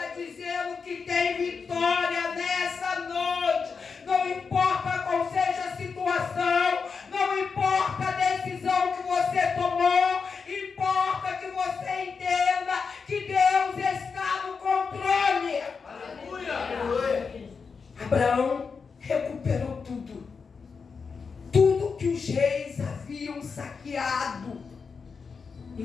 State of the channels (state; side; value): quieter; right; 5.3 dB